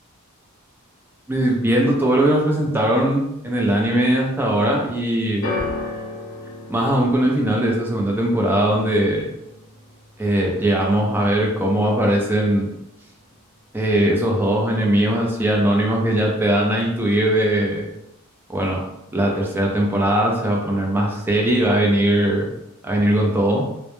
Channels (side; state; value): both; normal; correlation 0.65